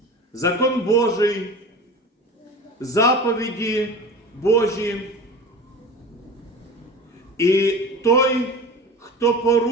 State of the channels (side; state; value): both; normal; correlation 0.34